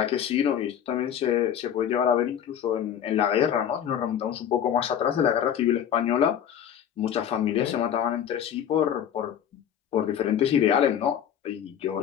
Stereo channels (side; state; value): right; quieter; 9.4 dB